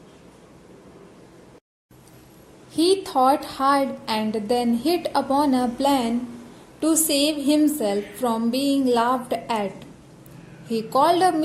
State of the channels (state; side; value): identical; both; correlation 1.00